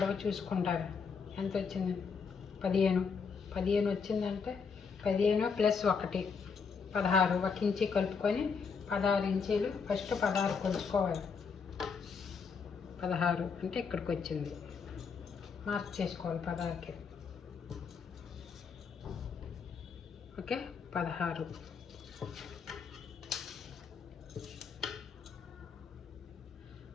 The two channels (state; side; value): quieter; right; 5.6 dB